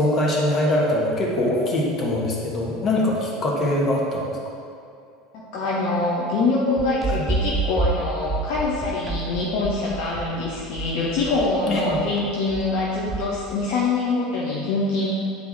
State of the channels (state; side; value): normal; both; correlation 0.38